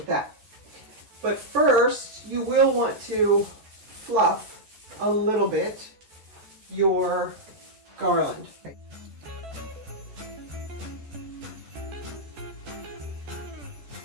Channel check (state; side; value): late; left; 13 ms